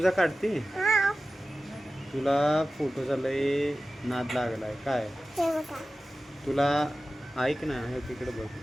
काढते? तुला फोटोचा लय नाद लागलाय काय? तुला ऐक ना, हे तिकडे बघ,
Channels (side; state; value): both; normal; correlation 0.95